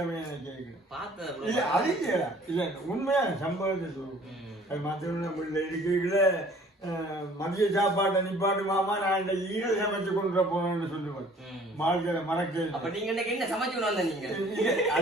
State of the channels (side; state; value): both; normal; correlation 0.54